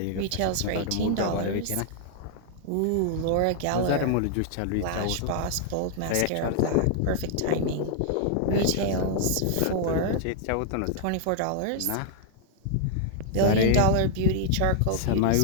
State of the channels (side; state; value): both; different; correlation 0.00